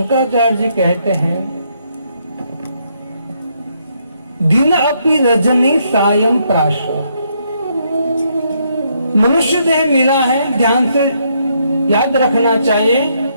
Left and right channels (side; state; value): both; inverted; correlation -0.74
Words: जी कहते हैं दिन अपि रजनी सायं प्राश। मनुष्य देह मिला है, ध्यान से याद रखना चाहिए।